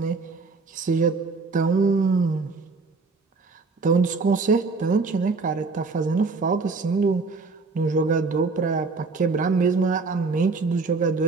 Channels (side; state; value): left; quieter; 4.1 dB